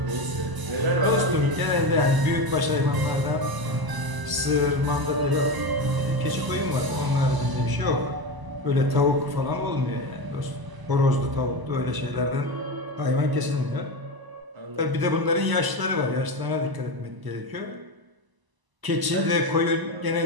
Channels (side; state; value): left; late; 1.0 ms